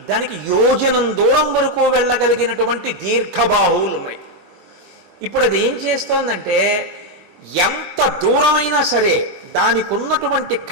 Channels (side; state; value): left; late; 21 ms